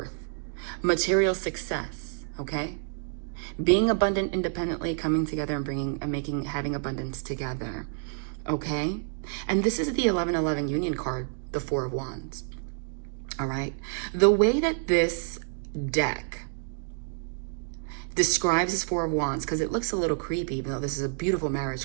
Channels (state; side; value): silent; left; digital silence